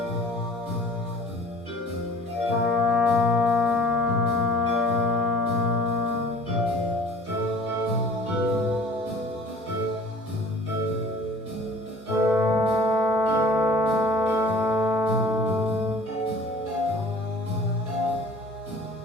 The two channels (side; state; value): both; normal; correlation 0.48